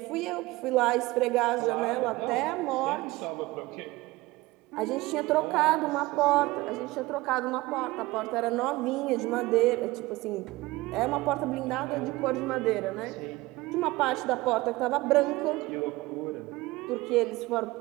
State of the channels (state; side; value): quieter; left; 20.2 dB